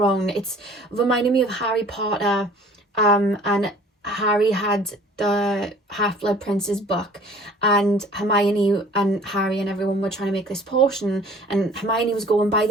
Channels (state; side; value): normal; both; correlation 0.50